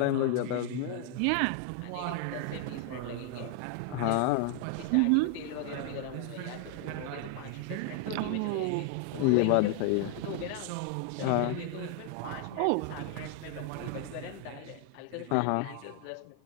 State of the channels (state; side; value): different; both; correlation 0.00